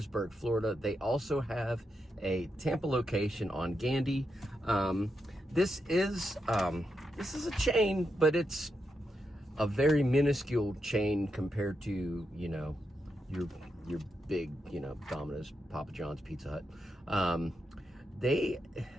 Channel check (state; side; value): normal; both; correlation 0.85